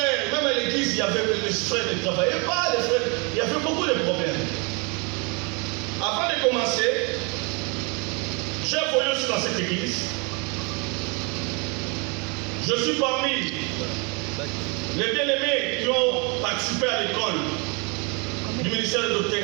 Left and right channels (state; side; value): quieter; left; 31.8 dB